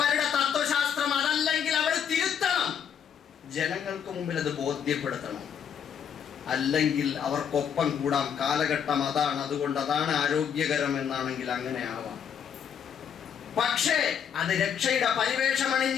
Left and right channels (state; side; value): quieter; right; 8.0 dB